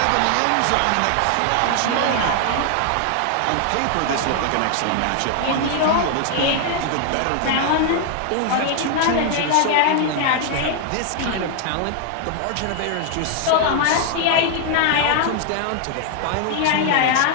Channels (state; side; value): different; both; correlation 0.00